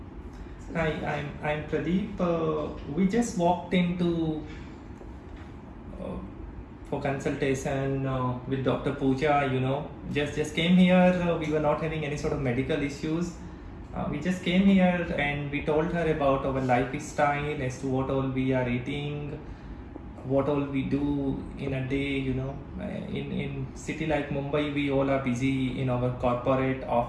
Hi, I'm Pradeep. We just walked into for consultation with Dr. Pooja. Just came here. We were not having any sort of medical issues. We just came here and we told her about our lifestyle, as to what all we are eating, what all we do in a day. In city like Mumbai, we all are busy in our corporate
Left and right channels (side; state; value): both; identical; correlation 1.00